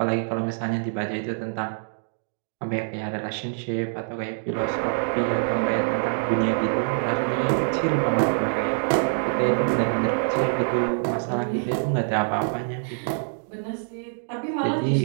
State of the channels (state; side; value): silent; left; digital silence